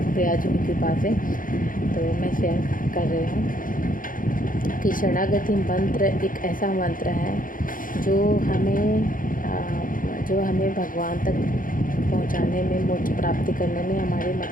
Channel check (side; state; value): right; late; 0.40 ms